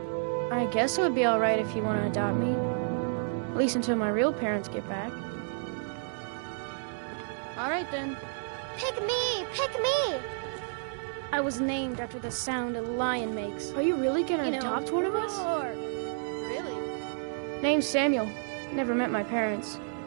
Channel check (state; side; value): silent; left; digital silence